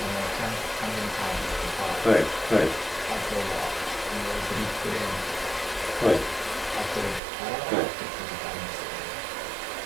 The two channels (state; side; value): drops out; left; at 7.2 s